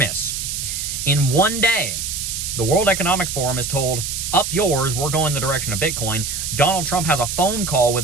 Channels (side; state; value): right; noise; hiss, 4 dB below the sound